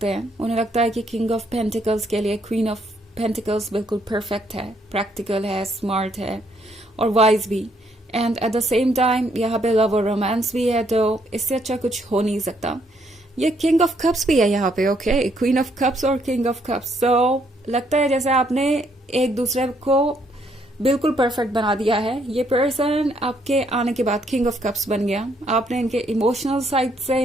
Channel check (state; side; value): normal; both; correlation 0.71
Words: हैं। उन्हें लगता है कि किंग ऑफ पेंटिकल्स के लिए क्वीन ऑफ पेंटिकल्स बिल्कुल परफेक्ट है, प्रैक्टिकल है, स्मार्ट है और वाइज भी, and at the same time यहाँ पे लव और रोमांस भी है, तो इससे अच्छा कुछ हो नहीं सकता। ये किंग ऑफ कप्स भी है यहाँ पे, ओके, क्वीन ऑफ कप्स और किंग ऑफ कप्स। सो लगता है जैसे आपने एक दूसरे को बिल्कुल परफेक्ट बना दिया है। ये पर्सन आपके आने के बाद किंग ऑफ कप्स बन गया, आपने इनके इमोशनल साइड से